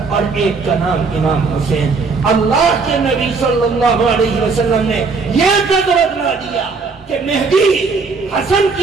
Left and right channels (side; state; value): left; quieter; 4.5 dB